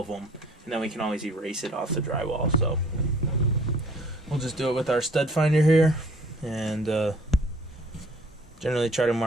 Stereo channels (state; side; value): normal; both; correlation 0.55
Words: them, and then we can always erase it off the drywall. So we'll just do it with our stud finder here, and generally try to